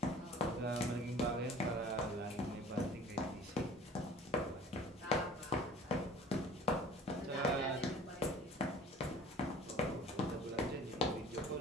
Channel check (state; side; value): normal; both; correlation 0.46